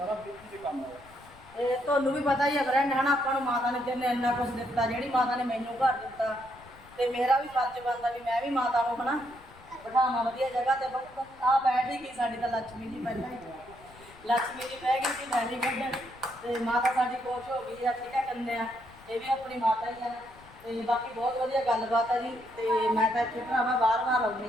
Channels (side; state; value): left; noise; rumble, 24 dB below the sound